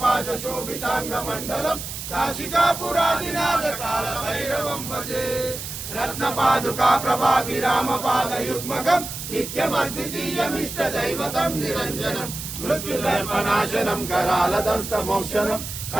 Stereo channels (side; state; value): right; noise; hiss, 8 dB below the sound